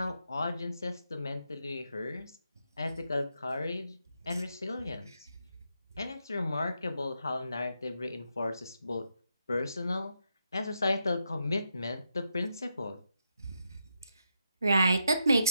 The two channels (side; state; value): both; inverted; correlation -0.81